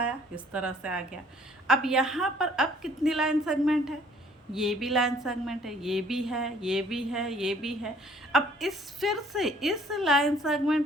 इस तरह से आ गया। अब यहाँ पर अब कितनी लाइन सेगमेंट है, ये भी लाइन सेगमेंट है, ये भी है, ये भी है, ये भी है। अब फिर से इस लाइन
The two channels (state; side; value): normal; both; correlation 0.58